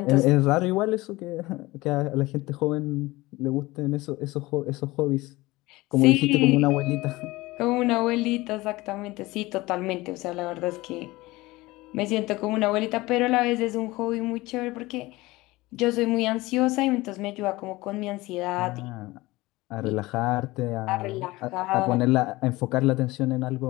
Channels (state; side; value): quieter; right; 20.2 dB